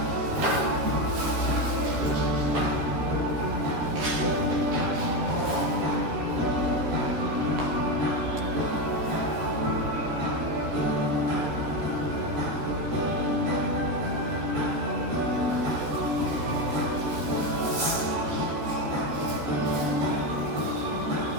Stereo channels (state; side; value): late; left; 13 ms